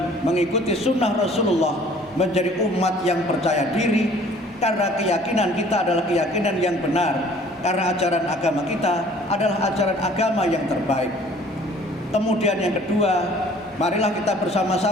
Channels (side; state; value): both; normal; correlation 0.54